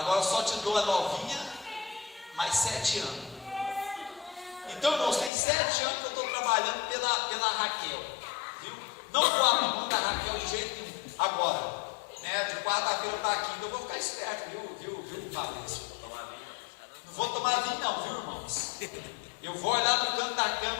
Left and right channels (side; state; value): right; drops out; at 5.3 s